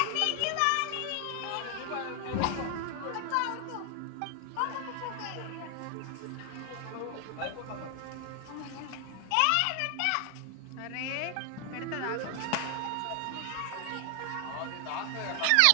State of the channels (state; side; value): different; both; correlation 0.01